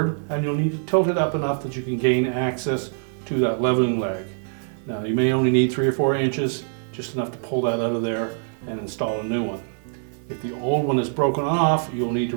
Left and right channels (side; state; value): left; silent; digital silence